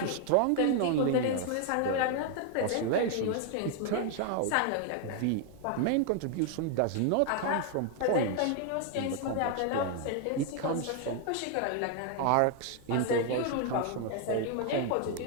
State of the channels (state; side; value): different; both; correlation 0.00